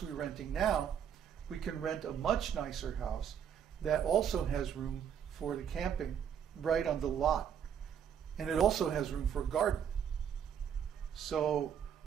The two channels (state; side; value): quieter; left; 8.4 dB